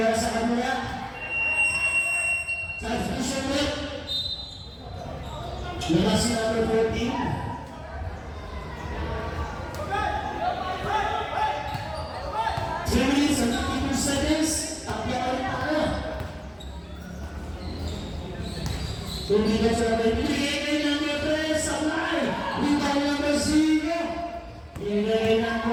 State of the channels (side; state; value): both; identical; correlation 1.00